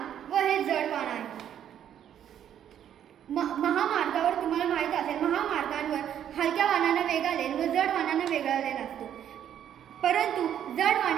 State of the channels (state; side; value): quieter; left; 9.9 dB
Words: व हे जड वाहन आहे. महामार्गावर तुम्हाला माहीत असेल, महामार्गांवर हलक्या वाहनांना वेगळा लेन व जड वाहनांना वेगळा लेन असतो. परंतु जड